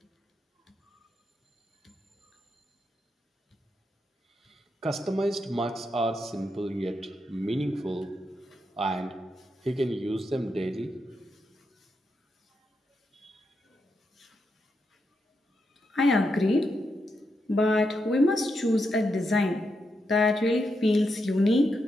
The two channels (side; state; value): both; normal; correlation 0.84